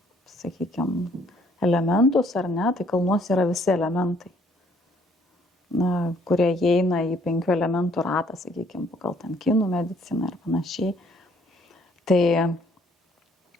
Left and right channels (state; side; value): normal; both; correlation 0.64